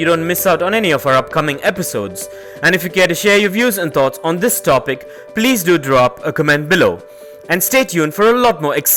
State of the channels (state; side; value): identical; both; correlation 1.00